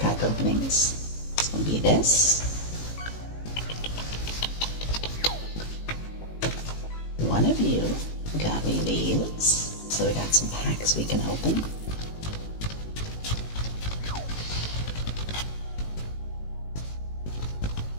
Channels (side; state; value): right; late; 18 ms